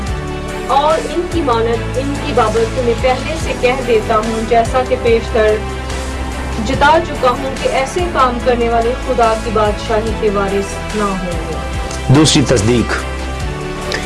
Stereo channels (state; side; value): identical; both; correlation 1.00